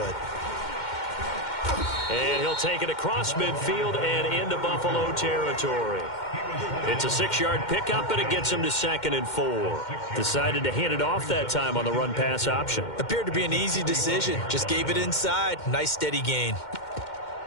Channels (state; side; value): late; right; 2.1 ms